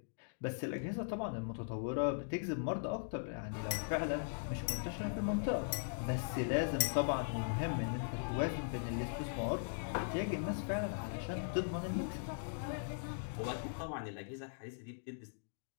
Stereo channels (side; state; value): right; silent; digital silence